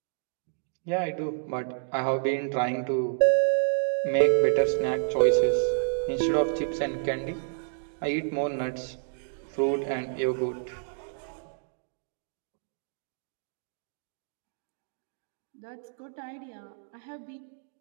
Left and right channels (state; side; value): silent; left; digital silence